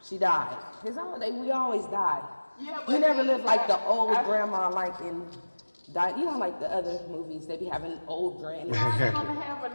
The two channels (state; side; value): inverted; both; correlation -1.00